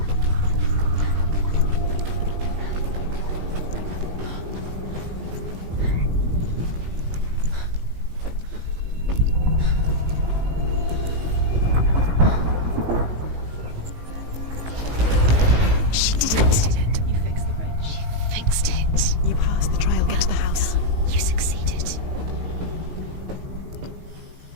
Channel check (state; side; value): late; left; 18 ms